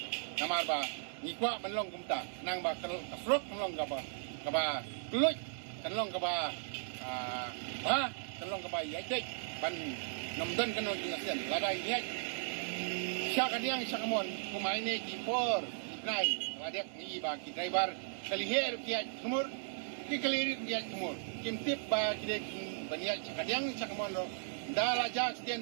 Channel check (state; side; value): silent; left; digital silence